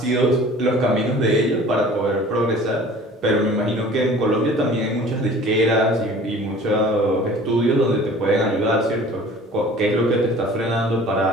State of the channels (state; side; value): normal; both; correlation 0.46